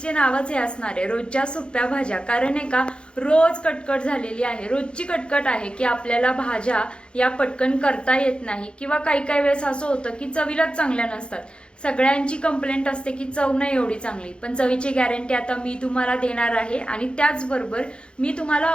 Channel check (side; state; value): right; late; 0.055 ms